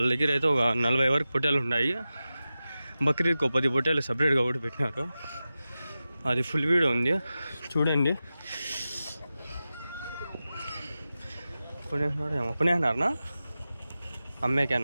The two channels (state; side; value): inverted; both; correlation -0.94